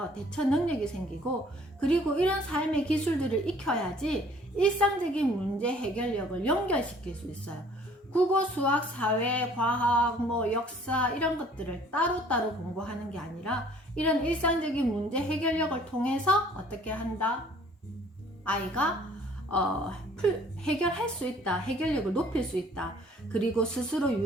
대처 능력이 생기고, 그리고 이런 삶의 기술들을 익혀야지 일상적인 문제 해결력을 연결시킬 수 있어요. 국어, 수학, 사회, 과학, 뭐 역사 이런 것들을 따로따로 공부하는 게 아니라 이런 일상적인 문제 해결력을 통해서 어떻게 한다? 아이가 해결할 수 있다. 해결력을 높일 수 있다. 그리고 스스로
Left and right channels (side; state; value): both; normal; correlation 0.55